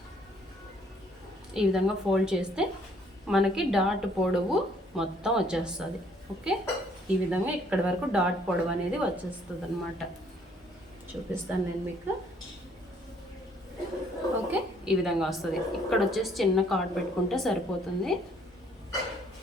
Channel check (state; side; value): normal; both; correlation 0.63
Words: ఈ విధంగా ఫోల్డ్ చేస్తే మనకి డాట్ పొడవు మొత్తం వచ్చేస్తుంది. ఓకే, ఈ విధంగా ఇక్కడి వరకు డాట్ పొడవు అనేది వచ్చేస్తుంది అనమాట. చూపిస్తాను నేను మీకు. ఓకే, ఈ విధంగా వస్తుంది. ఇక్కడ వచ్చేసి చిన్న కార్డ్ పెట్టుకుంటే సరిపోతుంది.